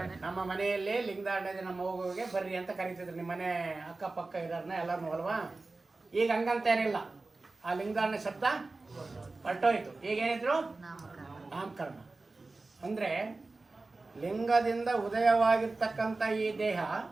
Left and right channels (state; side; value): quieter; left; 3.4 dB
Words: ನಮ್ಮ ಮನೆಯಲ್ಲಿ ಲಿಂಗಧಾರಣೆ ನಮ್ಮ ಮಗುವಿಗೆ ಬರ್ರಿ ಅಂತ ಕರೀತಿದ್ರು. ನಿಮ್ಮ ಮನೆ ಅಕ್ಕಪಕ್ಕ ಇರೋರ್ನ ಎಲ್ಲರೂ ಅಲ್ವಾ. ಈಗ ಹಂಗಂತೇನಿಲ್ಲ, ಆ ಲಿಂಗಧಾರಣೆ ಶಬ್ದ ಹೊರಟೋಯ್ತು. ಈಗೇನಿದ್ರು? ನಾಮಕರಣ. ಅಂದರೆ ಲಿಂಗದಿಂದ ಉದಯವಾಗಿರ್ತಕ್ಕಂಥ ಈ ದೇಹ